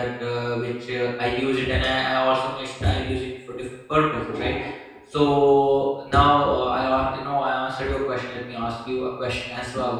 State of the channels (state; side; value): identical; both; correlation 1.00